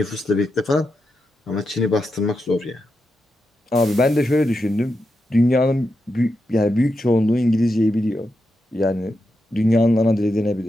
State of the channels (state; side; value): normal; both; correlation 0.86